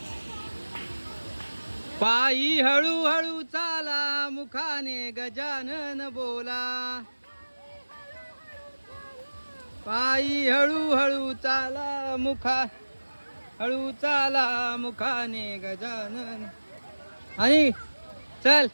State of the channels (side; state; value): both; inverted; correlation -1.00